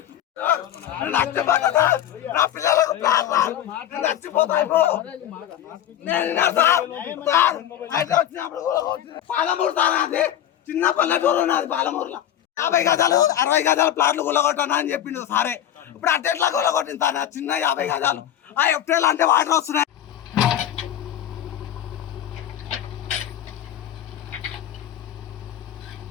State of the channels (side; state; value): right; quieter; 11.3 dB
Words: నా పిల్లలకు నచ్చిపోతాయి పాలమూరు సార్ అది చిన్న పల్లెటూరు ఉన్నది పాలమూరులో 50 గజాలు 60 గజాల ప్లాట్లు గుల్లగొట్టాను అని చెప్పిండు సారే ఇప్పుడు అట్టెట్లా గుల్లగొట్టింది సార్ చిన్న 50 గజాలు ఆ ఎఫ్టీఎల్ అంటే వాటర్ వస్తున్నాయి